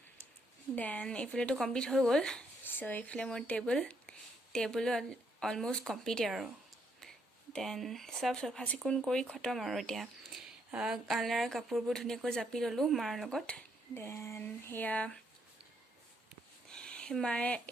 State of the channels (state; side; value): normal; both; correlation 0.74